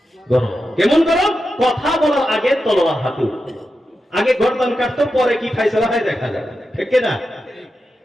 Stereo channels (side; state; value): both; normal; correlation 0.89